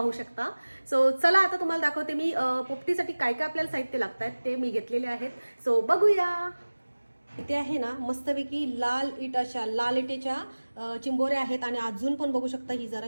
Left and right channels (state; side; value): inverted; both; correlation -1.00